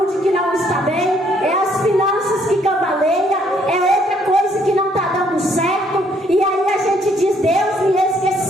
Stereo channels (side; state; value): both; normal; correlation 0.67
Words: que não está bem, é as finanças que cambaleia, é outra coisa que não está dando certo. E aí a gente diz: Deus me